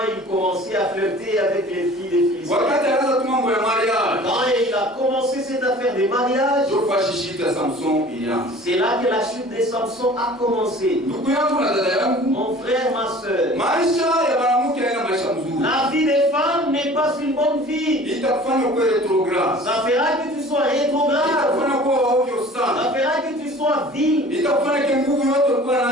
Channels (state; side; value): normal; both; correlation 0.46